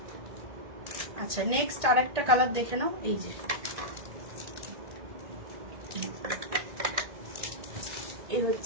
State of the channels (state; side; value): late; left; 1.8 ms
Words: আচ্ছা নেক্সট আর একটা কালার দেখে নাও। এই যে এই